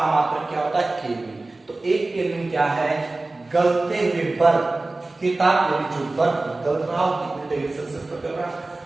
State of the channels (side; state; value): left; quieter; 3.1 dB